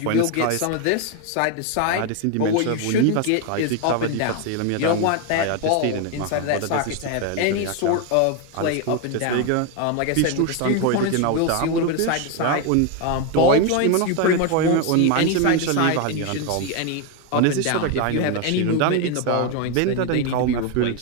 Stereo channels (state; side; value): different; both; correlation 0.01